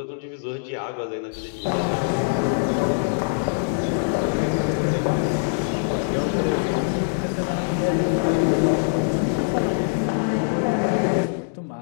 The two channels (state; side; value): silent; right; digital silence